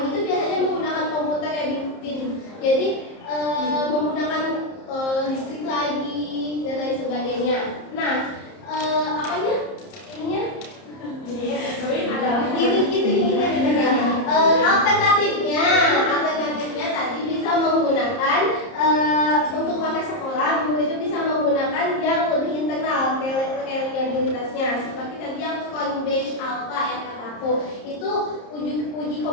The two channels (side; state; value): right; late; 30 ms